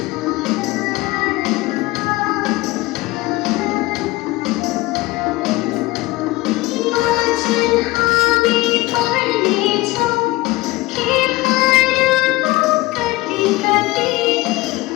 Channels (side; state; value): right; quieter; 20.1 dB